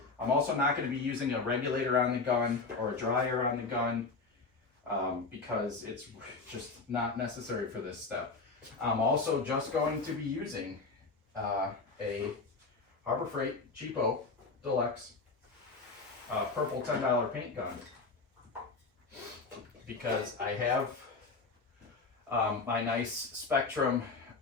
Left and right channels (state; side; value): quieter; right; 4.0 dB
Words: I'm also not going to be using a regulator on the gun or a dryer on the gun because it's just not necessary for this step. I'm also just going to be using a Harbor Freight Cheapo Deluxe purple $10 paint gun because I have my nice Spectrum